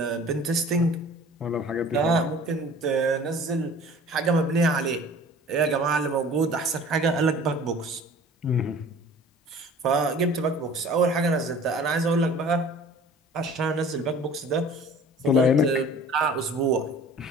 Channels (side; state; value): both; normal; correlation 0.46